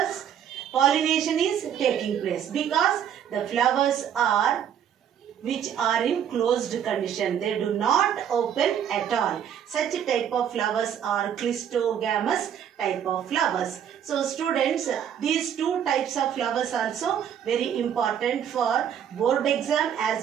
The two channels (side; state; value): left; quieter; 9.1 dB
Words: pollination is taking place because the flowers are which are in closed condition. They do not open at all. Such a type of flowers are Clistogamous type of flowers. So students, these two types of flowers also very important for board exam